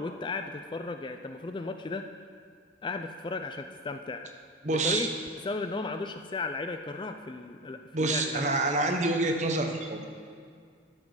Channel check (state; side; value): normal; both; correlation 0.25